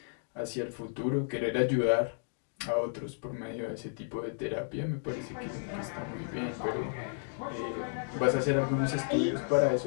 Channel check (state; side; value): silent; right; digital silence